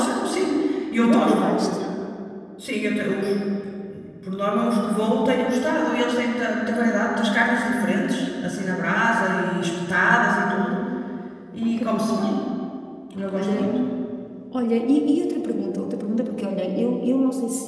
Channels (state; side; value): identical; both; correlation 1.00